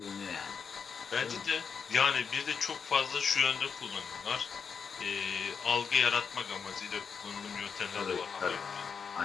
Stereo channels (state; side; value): quieter; right; 6.2 dB